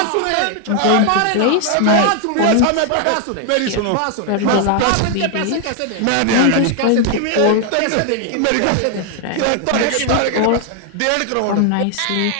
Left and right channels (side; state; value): both; different; correlation 0.00